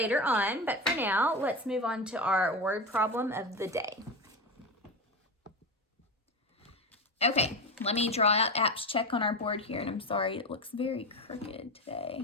on, but for now, let's move on to our word problem of the day. Okay, let me draw out apps check on our board here, and I'm sorry, it looks very crooked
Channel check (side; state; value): both; normal; correlation 0.20